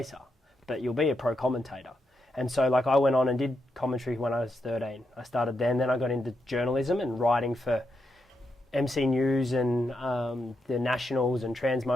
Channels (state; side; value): normal; both; correlation 0.83